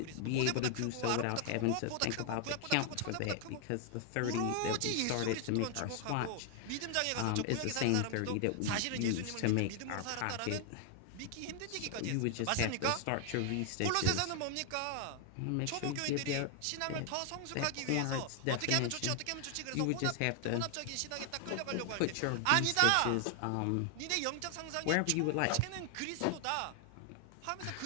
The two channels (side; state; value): both; different; correlation 0.00